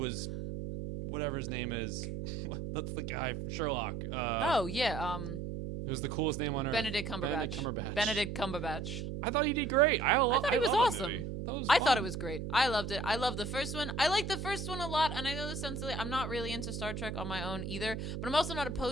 whatever his name is. That's the guy from Sherlock. Oh yeah. Who's the coolest name on earth? Benedict Cumberbatch. Benedict Cumberbatch. I thought he did great. I thought he was love awesome. That movie. I thought it was great. I loved it. I loved the first one. I like the first one a lot, and I know this sounds silly. I'm not really into Star Trek on my own either, but I'm also not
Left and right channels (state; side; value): noise; right; hum, 5 dB below the sound